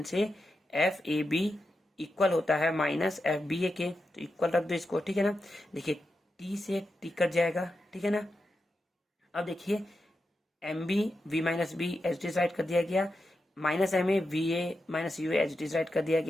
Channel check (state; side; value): normal; both; correlation 0.88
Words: से एफ ए बी इक्वल होता है माइनस एफ बी ए के, तो इक्वल रख दो इसको, ठीक है ना। देखिए टी से टी कट जाएगा, ठीक है ना। अब देखिए M B V minus B H D write कर दिया गया, minus M A V A minus U H D write कर दिया